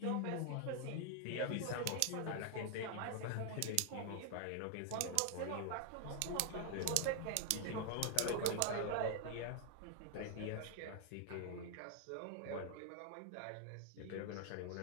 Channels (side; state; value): both; different; correlation 0.00